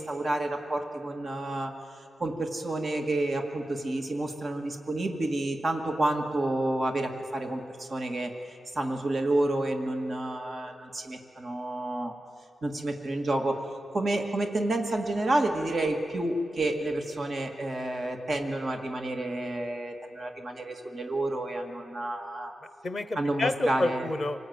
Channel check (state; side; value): normal; both; correlation 0.92